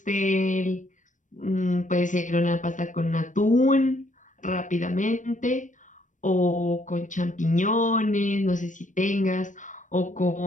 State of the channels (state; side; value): late; right; 0.37 ms